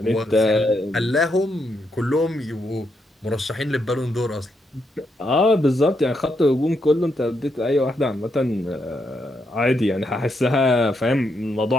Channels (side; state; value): both; normal; correlation 0.80